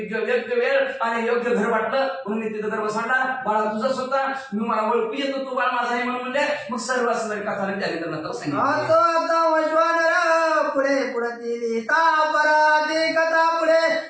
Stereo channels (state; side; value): identical; both; correlation 1.00